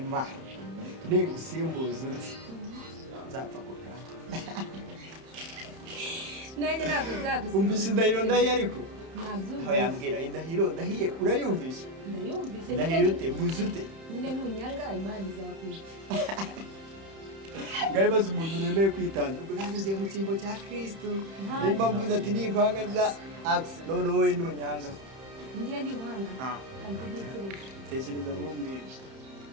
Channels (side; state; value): left; late; 31 ms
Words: Ningusimbuza undi nzapfa kukana. Nanjye ntabwo nzagusimbuza. Umvise indahiro ndahiye ariko? Ntabyo. Aho yambwira indahiro ndahiye urayumvise? Ndayumvise. Ndahiye ute mbuze ute? Nyine nunyanga Imana izakwica. Ngaye baza umuntu nemeye kwitanga. Ubwo nanjye ngiye mu cyimbo cya Kristo. Nimba mvuze ati nikwanga za axe none wowe nunyanga. Ngiye niwanga. Kandi ntekereza. Tekereza mumbwire.